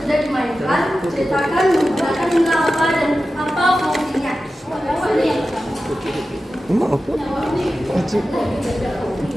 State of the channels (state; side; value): normal; both; correlation 0.93